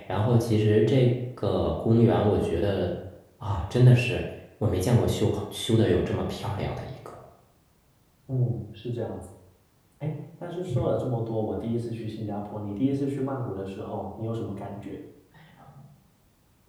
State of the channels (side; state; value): both; identical; correlation 1.00